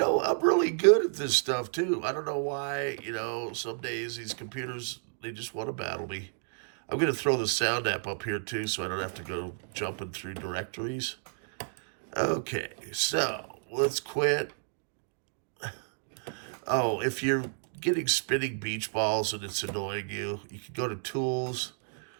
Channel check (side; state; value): left; silent; digital silence